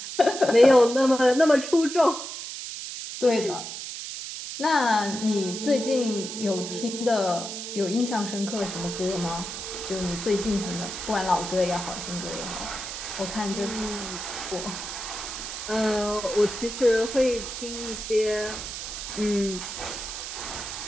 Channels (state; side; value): noise; right; hiss, 7 dB below the sound